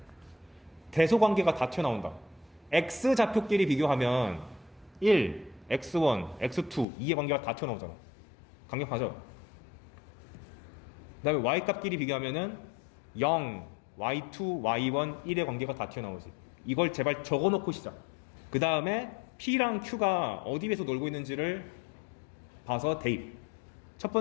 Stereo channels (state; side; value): drops out; right; at 6.9 s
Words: 대소관계가 다 튀어나온다. x 좌표끼리 비교하면 1, x1, x2, 2의 관계가 다 튀어나오잖아. 강력하죠? 그 다음에 y값끼리 비교하면은 0, y2, y1, 1의 관계가 다 튀어나오지. 이걸 제발 적어놓고 시작. 그 다음에 p랑 q가 어디 에서 놀고 있는지를 봐서 대입. 첫